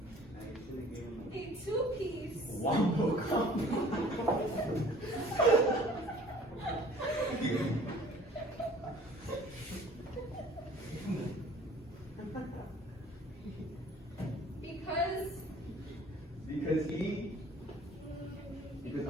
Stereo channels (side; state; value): both; normal; correlation 0.51